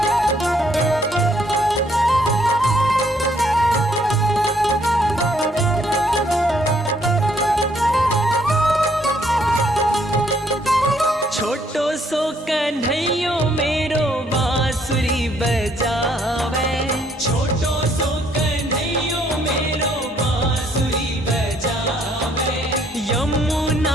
छोटो सो कन्हैयो मेरो बांसुरी बजावे, छोटो सो कन्हैयो मेरो बांसुरी बजावे।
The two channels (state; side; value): normal; both; correlation 0.67